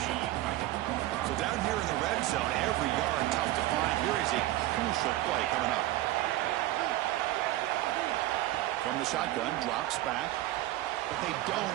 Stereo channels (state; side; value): quieter; left; 16.0 dB